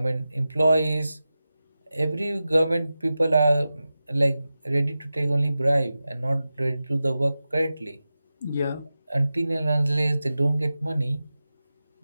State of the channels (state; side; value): inverted; both; correlation -0.94